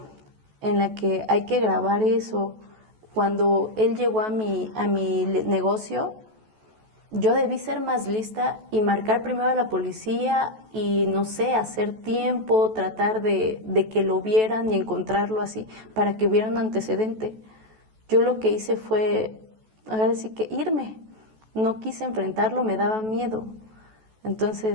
en la que hay que grabar eso. Cuando él llegó a mi negocio, yo debí ser más lista y marcar primero a la policía y, no sé, hacer tiempo, tratar de que lo vieran y encontrarlo así, para que hubiera un antecedente. Yo lo que hice fue, ahora sí que irme. No quise enfrentarlo, me daba miedo.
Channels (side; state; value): left; late; 14 ms